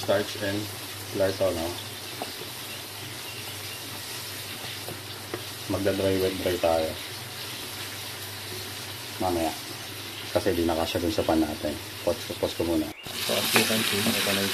and flour to, no? Magda-dry wet dry tayo mamaya kasi di nakasya dun sa pan natin. Pause ko muna. So as you can see, ito na yung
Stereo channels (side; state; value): both; identical; correlation 1.00